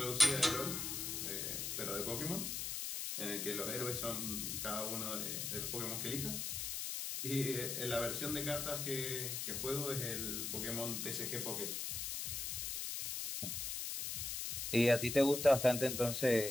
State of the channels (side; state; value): left; noise; hiss, 3 dB below the sound